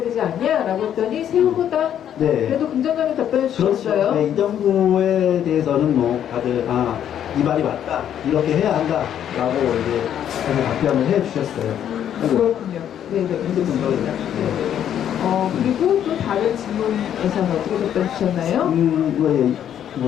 되지 않냐라고 했더니 새우보다 네. 그래도 긍정적인 답변을 그렇죠. 주셨어요. 네, 이 정부에 대해서는 뭐 다들 이 말이 맞다 이렇게 해야 한다라고 이제 다들 답변을 해주셨어요. 그렇군요. 네네, 좋습니다. 네. 네네. 그리고 또 다른 질문에서는 어떻게 답변 주셨나요?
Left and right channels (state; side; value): quieter; right; 9.9 dB